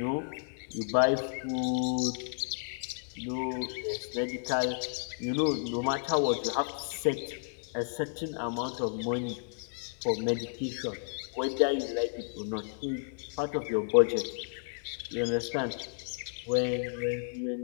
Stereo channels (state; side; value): silent; right; digital silence